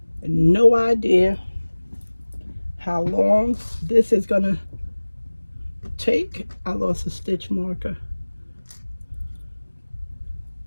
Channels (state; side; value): inverted; both; correlation -1.00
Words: no idea how long this is gonna take. I lost a stitch marker.